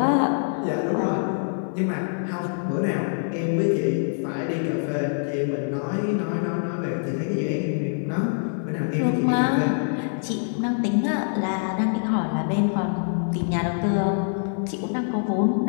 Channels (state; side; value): silent; right; 55 dB below the other